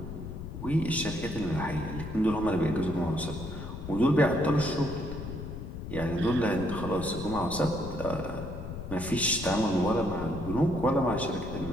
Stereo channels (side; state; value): left; noise; rumble, 8 dB below the sound